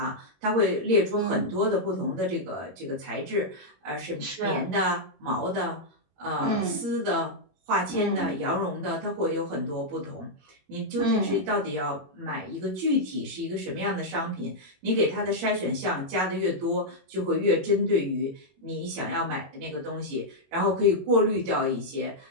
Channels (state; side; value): late; left; 21 ms